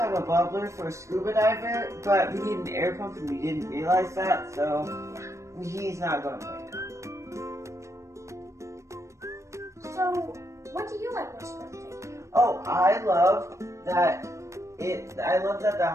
have a bubbler for a scuba diver, but we need an air pump and we didn't realize that, so he's not going right now. So, what do you like most about the tank? Oh, I love that the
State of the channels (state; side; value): late; left; 0.14 ms